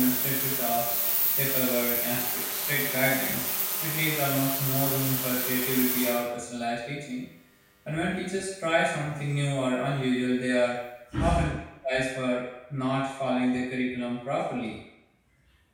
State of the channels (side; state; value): both; identical; correlation 1.00